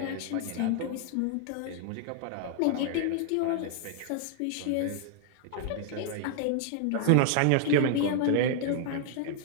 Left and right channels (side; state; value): both; different; correlation 0.00